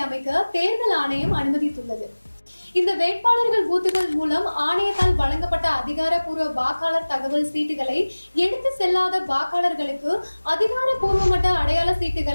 அமைக்க தேர்தல் ஆணையம் அனுமதித்துள்ளது. இந்த வேட்பாளர்கள் பூத்துகள் மூலம் ஆணையத்தால் வழங்கப்பட்ட அதிகாரப்பூர்வ வாக்காளர் தகவல் சீட்டுகளை எடுத்து செல்லாத வாக்காளர்களுக்கு அதிகாரப்பூர்வமற்ற அடையாள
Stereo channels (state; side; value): inverted; both; correlation -1.00